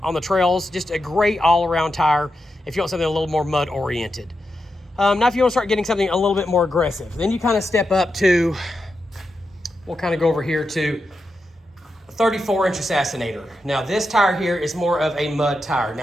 the trails, just a great all-around tire if you want something a little more mud oriented. Now if you want to start getting something a little bit more aggressive, then you kind of step up to, we'll kind of go over here to 34-inch Assassinator. Now this tire here is more of a mud tire.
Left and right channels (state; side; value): normal; both; correlation 0.87